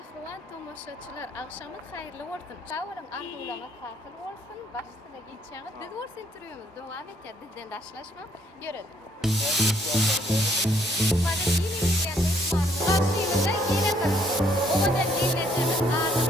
tomoshachilar. Akşamın hayırlı olsun. Şavırın arzularına tatil olsun. Başta geçeceğimiz biz olsun turuyumuz. Devam et ya, bizden daşlaşma. Görelim. Bana yine geldiğimiz var. Karşıyımızda yine karıştık. O kadar yiyeceğimiz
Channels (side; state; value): both; normal; correlation 0.66